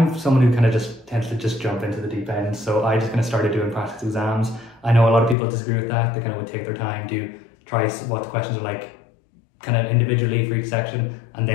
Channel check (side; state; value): right; drops out; at 5.4 s